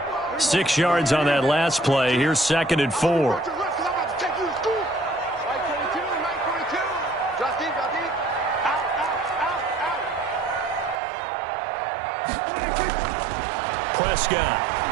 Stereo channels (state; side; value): drops out; left; at 11.0 s